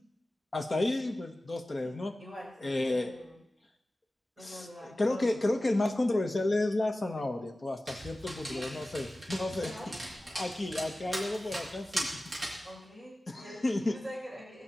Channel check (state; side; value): normal; both; correlation 0.96